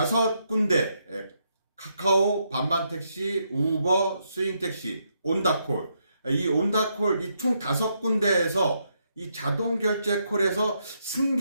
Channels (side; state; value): both; inverted; correlation -0.78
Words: 카카오, 반반택시, 우버, 스윙택시, 온다콜 이 온다콜 이 총 5군데에서 이 자동 결제 콜에서